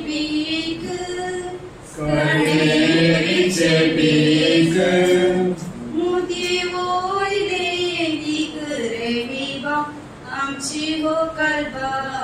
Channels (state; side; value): identical; both; correlation 1.00